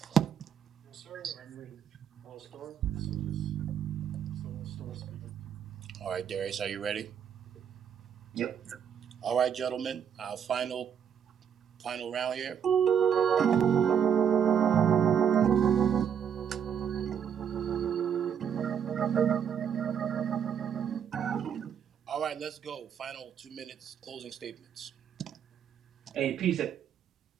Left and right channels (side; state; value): left; quieter; 8.1 dB